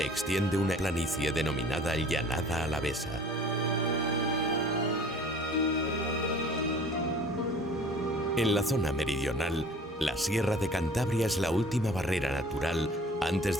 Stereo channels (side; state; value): both; normal; correlation 0.48